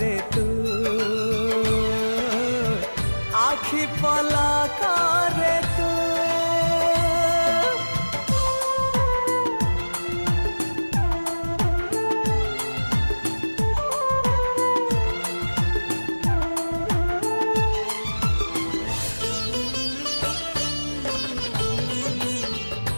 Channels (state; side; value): inverted; both; correlation -1.00